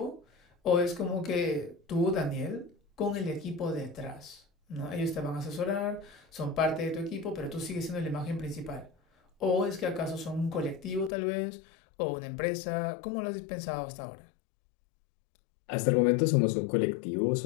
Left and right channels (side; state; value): right; drops out; at 11.1 s